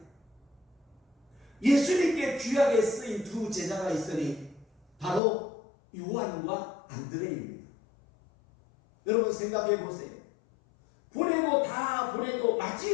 예수님께 귀하게 쓰인 두 제자가 있으니 바로 요한과 안드레입니다. 여러분 생각해 보세요. 보내고 다 보내도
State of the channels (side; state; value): right; drops out; at 5.2 s